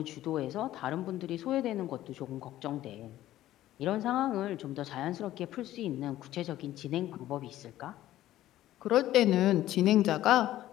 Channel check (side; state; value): right; quieter; 14.1 dB